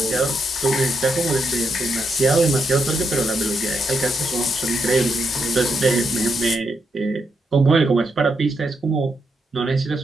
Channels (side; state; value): both; normal; correlation 0.80